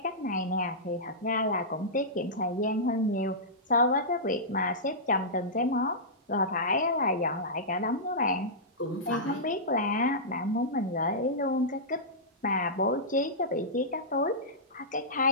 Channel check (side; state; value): both; normal; correlation -0.15